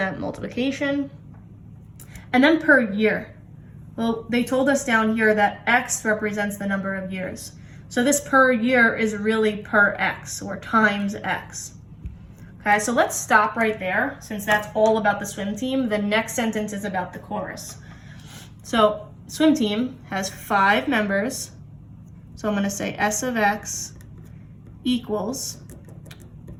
multiplication. And then per year. Well, they told us down here that x represents the number of years. So this per year is really per x, or times x. Okay, so let's stop right there. Since that's all about the swim team, the next sentence is about the chorus. So swim team has 5 members. So I'm going to say s of x equals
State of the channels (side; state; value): both; identical; correlation 1.00